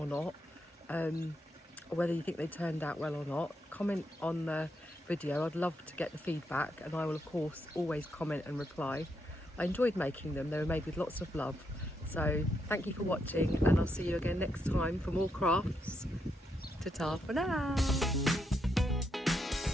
not. Or whether you think they turned out well or not. Comment on the video. I'd love to get the feedback, and I will of course always comment and reply. I enjoyed making them. They were made with lots of love. So thank you for watching, and I'll see you again next time for more crafts. Ta-ta for now.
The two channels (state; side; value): normal; both; correlation 0.80